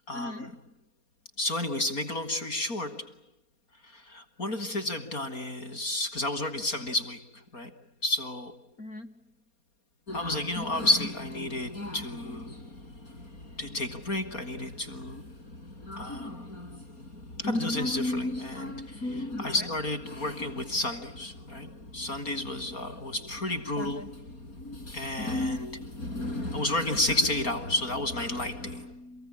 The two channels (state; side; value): late; right; 4.3 ms